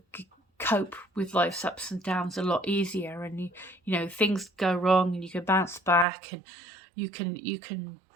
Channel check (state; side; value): drops out; left; at 6.1 s